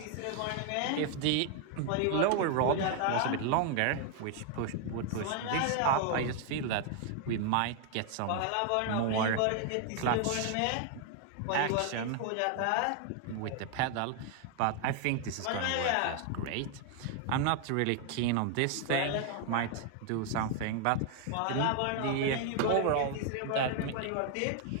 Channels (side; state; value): both; different; correlation 0.00